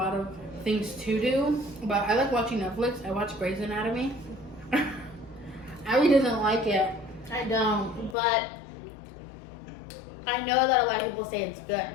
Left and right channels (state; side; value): drops out; right; at 8.2 s